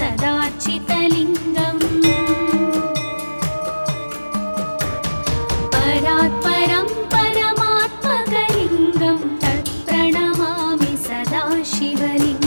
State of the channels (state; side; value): inverted; both; correlation -1.00